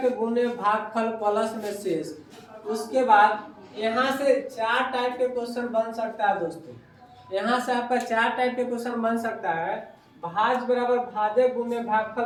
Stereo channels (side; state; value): both; identical; correlation 1.00